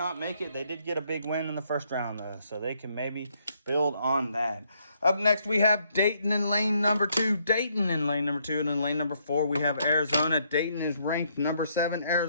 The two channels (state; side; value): inverted; both; correlation -0.72